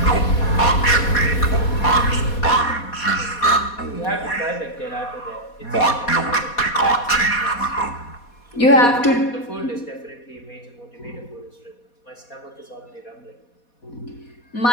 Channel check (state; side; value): late; right; 4.2 ms